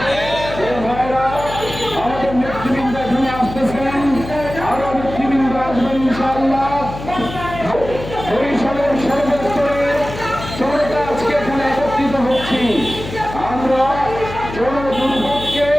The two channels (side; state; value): left; noise; hum, 11 dB below the sound